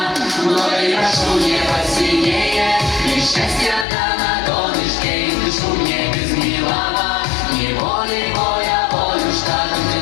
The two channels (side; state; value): right; drops out; at 3.9 s